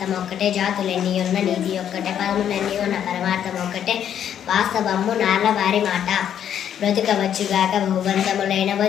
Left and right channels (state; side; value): quieter; right; 9.5 dB